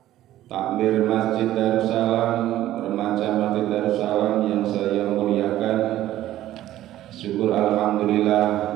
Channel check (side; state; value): left; quieter; 13.8 dB